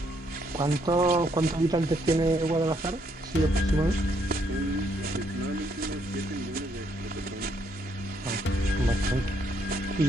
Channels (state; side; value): normal; both; correlation 0.72